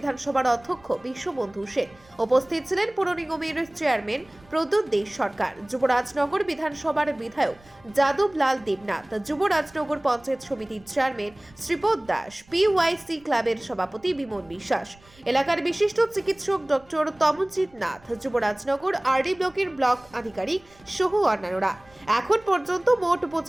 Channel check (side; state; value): right; noise; rumble, 28 dB below the sound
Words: অধ্যক্ষ বিশ্ববন্ধু সেন, উপস্থিত ছিলেন পৌর নিগমের চেয়ারম্যান প্রদ্যুৎ দে সরকার, যুবরাজনগর বিধানসভার বিধায়ক যাদবলাল দেবনাথ, যুবরাজনগর পঞ্চায়েত সমিতির চেয়ারম্যান শ্রীপদ দাস, পিওয়াইসি ক্লাবের সভাপতি বিমল বিশ্বাস, এলাকার বিশিষ্ট চিকিৎসক ডক্টর তমনজিৎ নাথ, যুবরাজনগর আরডি ব্লকের ব্লক আধিকারিক সহ অন্যান্যরা। এখন পর্যন্ত মোট